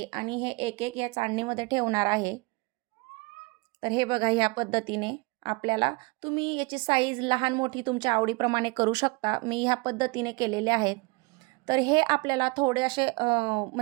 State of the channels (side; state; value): left; quieter; 26.7 dB